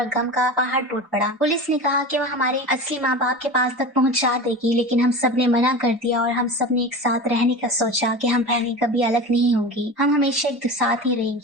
गम का पहाड़ टूट पड़ा। पुलिस ने कहा कि वो हमारे असली माँ बाप के पास तक पहुंचा देगी, लेकिन हम सब ने मना कर दिया और हम सब ने एक साथ रहने का सोचा कि हम बहनें कभी अलग नहीं होंगी, हम हमेशा एक साथ ही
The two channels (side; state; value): both; normal; correlation 0.30